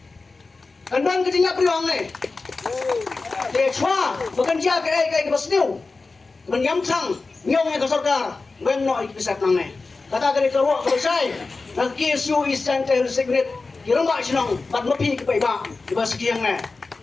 de chwa bukan dia kai basniu menyam sang nyong ka Sorkar ngem no ikisat nang ne kata kali kerwa selesai nak KSU Eastern Tail Secret kirang ba sinong pat mapi ki paiba di ba sekiang ne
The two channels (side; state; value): right; quieter; 3.9 dB